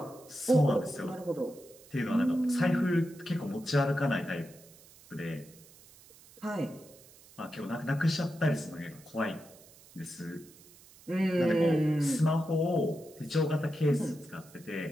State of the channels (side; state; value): right; noise; hiss, 23 dB below the sound